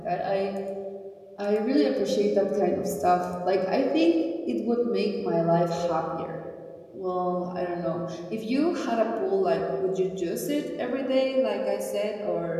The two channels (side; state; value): both; identical; correlation 1.00